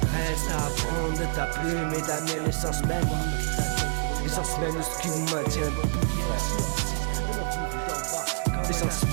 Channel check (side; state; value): left; silent; 60 dB below the other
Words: Reste à prendre de ta plume et ta mienne. L'essence même de ce qui nous maintient. De nos vies d'en bas, l'essence